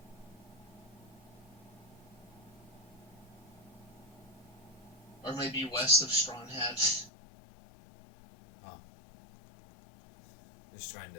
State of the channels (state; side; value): drops out; right; at 7.1 s